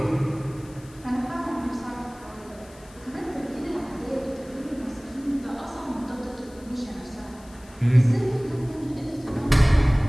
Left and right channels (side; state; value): left; noise; hiss, 25 dB below the sound